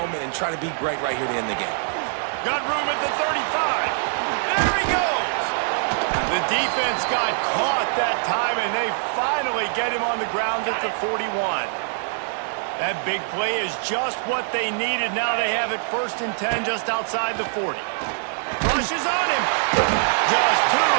and try to be great right here to end the game. Got room at the 35. There he goes. The defense got caught that time, and they finally get him on the ground at the 41. That big play is just what they needed. Now they have it 1st and 10 just outside the 40. Rushes on him. Just too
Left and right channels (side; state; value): left; silent; digital silence